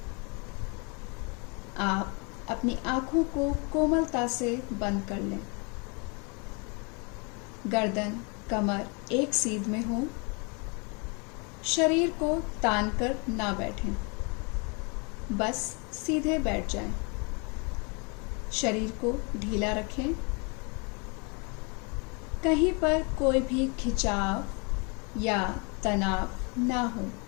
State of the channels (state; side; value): quieter; right; 32.7 dB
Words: आप अपनी आंखों को कोमलता से बंद कर लें। गर्दन, कमर एक सीध में हो। शरीर को तान कर ना बैठें, बस सीधे बैठ जाएं। शरीर को ढीला रखें। कहीं पर कोई भी खिंचाव या तनाव ना हो।